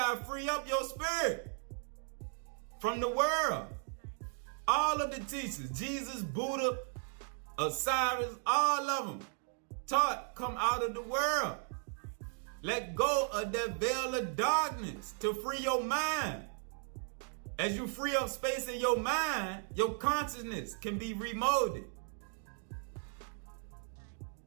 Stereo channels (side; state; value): left; silent; 54 dB below the other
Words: to free up your spirit from the world. All of the teachers, Jesus, Buddha, Osiris, all of them taught come out of the world. Let go of that veil of darkness to free your mind. As you free up space in your mind, your consciousness can be remolded.